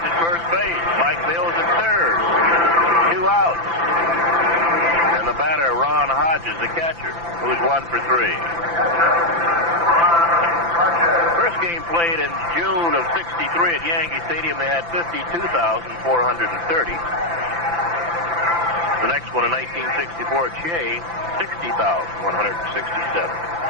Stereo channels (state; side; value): late; left; 5.9 ms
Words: at first base. Mike Mills at third. 2 outs. And the batter, Ron Hodges, the catcher, who's 1 for 3. First game played in June of 63 at Yankee Stadium. They had 52,430. The next one in 1964 at Shea, 60,167.